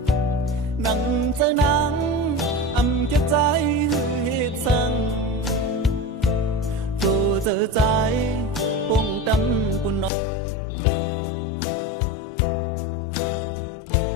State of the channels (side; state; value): right; drops out; at 10.1 s